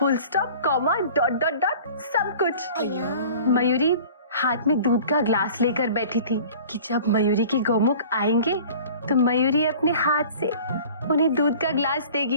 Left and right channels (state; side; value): inverted; both; correlation -0.45